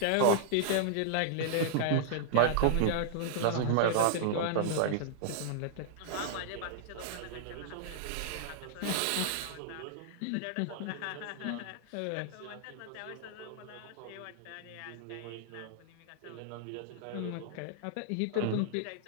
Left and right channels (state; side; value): different; both; correlation -0.01